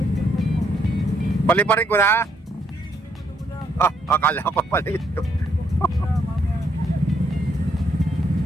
Paliparin ko na. Akala ko pala ito.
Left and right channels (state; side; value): normal; both; correlation 0.73